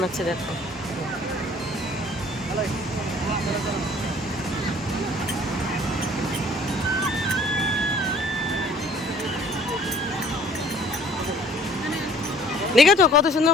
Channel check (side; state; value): both; normal; correlation 0.54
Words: দেখো। দেখেছো কত সুন্দর